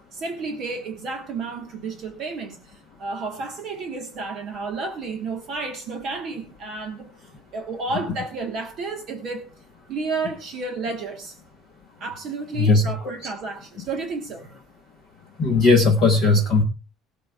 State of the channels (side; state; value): both; normal; correlation 0.42